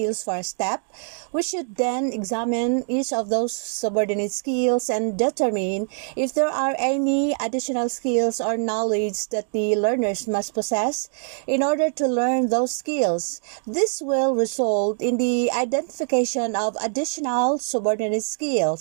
for a step, we should then examine each of those subordinate skills and determine if there are any additional skills or knowledge that the learners must possess in order to learn those skills. This will result in the identification of additional subordinate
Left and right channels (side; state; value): left; silent; 63 dB below the other